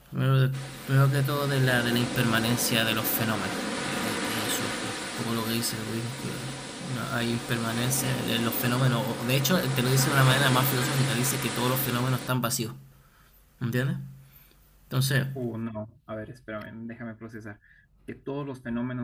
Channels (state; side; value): identical; both; correlation 1.00